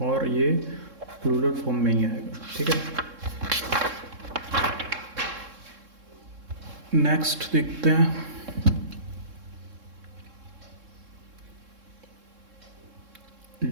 और ये प्लूरल फॉर्म में ही आएगा, ठीक है। नेक्स्ट देखते हैं,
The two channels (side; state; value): left; late; 3.7 ms